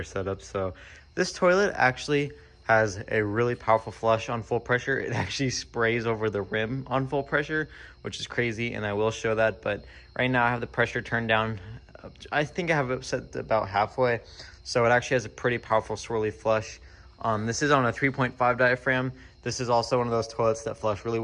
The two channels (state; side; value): identical; both; correlation 1.00